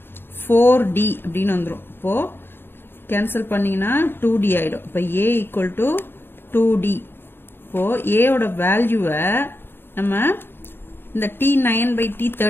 4D அப்படின்னு வந்துடும். இப்போ கேன்சல் பண்ணீங்கன்னா 2D ஆயிடும். இப்போ A ஈக்குவல் டு 2D. இப்போ A ஓட வேல்யூவை நம்ம இந்த T9 by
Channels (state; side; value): late; right; 0.10 ms